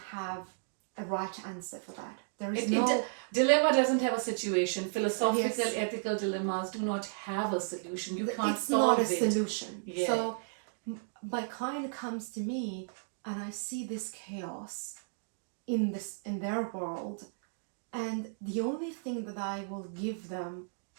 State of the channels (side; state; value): left; silent; digital silence